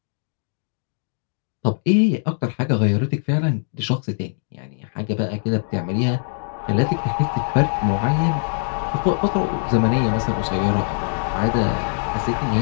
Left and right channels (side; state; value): right; silent; digital silence